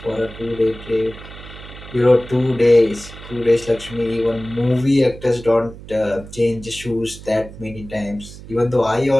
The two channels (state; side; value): noise; right; hum, 16 dB below the sound